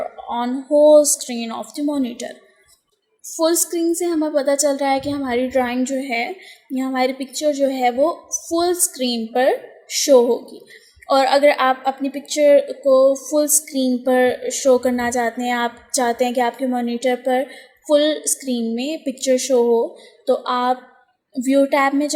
on whole screen of the monitor. Full screen से हमें पता चल रहा है कि हमारी drawing जो है या हमारी पिक्चर जो है वो फुल स्क्रीन पर शो होगी. और अगर आप अपनी पिक्चर को फुल स्क्रीन पर शो करना चाहते हैं, आप चाहते हैं कि आपके मॉनिटर पर फुल स्क्रीन में पिक्चर शो हो, तो आप व्यू टैब में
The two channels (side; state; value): both; identical; correlation 1.00